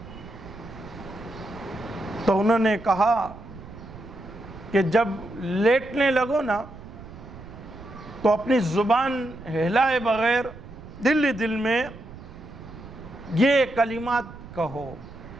تو انہوں نے کہا کہ جب لیٹنے لگو نا تو اپنی زبان ہلائے بغیر دل ہی دل میں یہ کلمات کہو:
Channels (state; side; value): noise; right; rumble, 15 dB below the sound